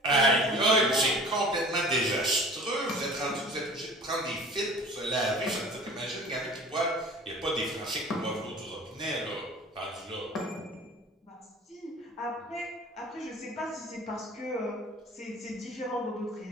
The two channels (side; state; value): both; normal; correlation 0.44